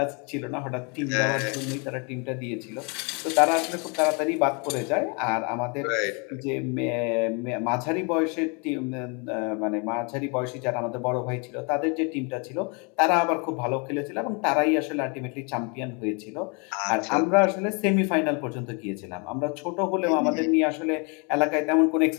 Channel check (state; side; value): quieter; right; 33.8 dB